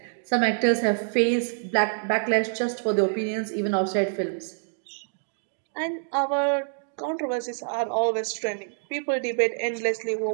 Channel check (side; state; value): left; silent; digital silence